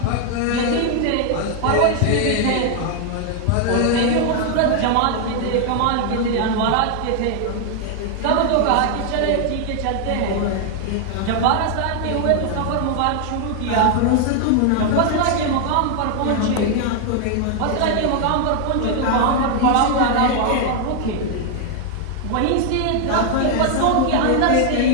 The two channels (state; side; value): different; both; correlation 0.00